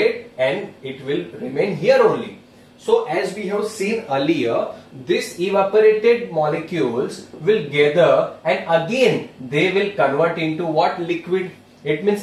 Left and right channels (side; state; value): both; identical; correlation 1.00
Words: and it will remain here only. So as we have seen earlier, this evaporated molecules will gather and again they will convert into what? Liquid. It